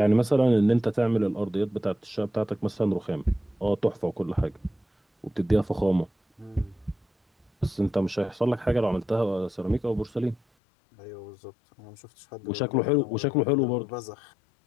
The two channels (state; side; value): drops out; right; at 10.4 s